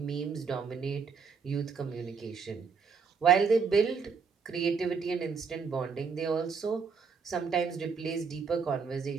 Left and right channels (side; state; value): left; quieter; 5.7 dB